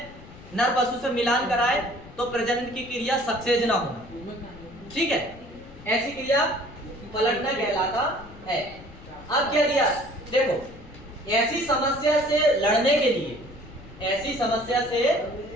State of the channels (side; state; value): left; noise; rumble, 19 dB below the sound